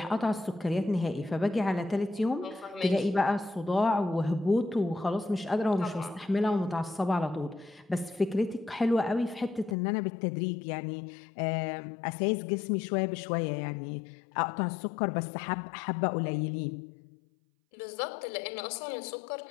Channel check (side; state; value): right; drops out; at 9.8 s